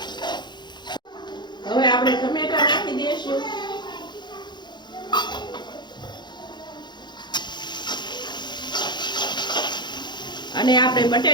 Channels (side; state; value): right; late; 0.21 ms